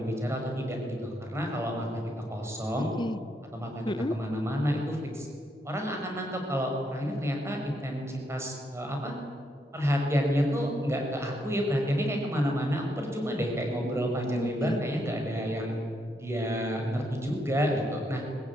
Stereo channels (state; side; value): normal; both; correlation 0.77